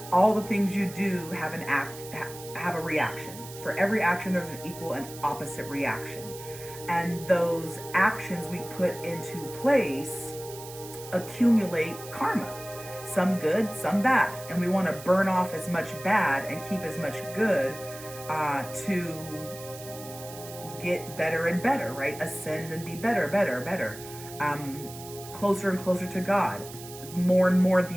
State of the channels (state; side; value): noise; right; hiss, 15 dB below the sound